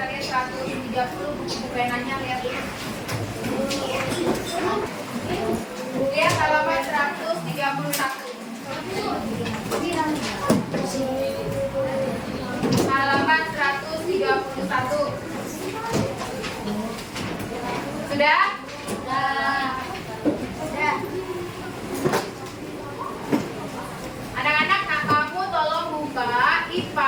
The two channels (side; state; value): both; identical; correlation 1.00